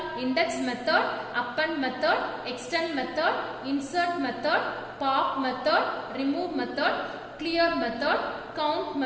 Index method, append method, extend method, insert method, pop method, remove method, clear method, count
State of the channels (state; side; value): identical; both; correlation 1.00